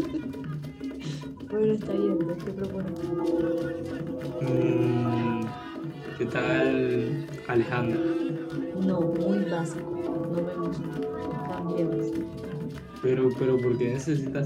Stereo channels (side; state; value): both; identical; correlation 1.00